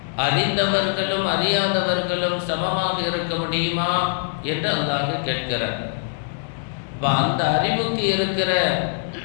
அறிந்தவர்களும் அறியாதவர்களும் சமமாக இருக்க முடியுமா என்று அல்லாஹ் கேட்கிறார். அந்த அறிவுக்கு இருக்கிற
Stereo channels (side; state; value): right; silent; digital silence